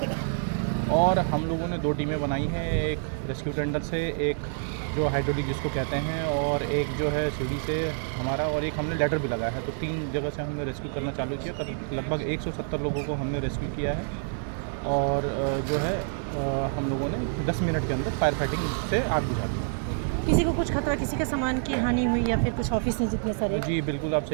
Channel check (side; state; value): left; silent; 55 dB below the other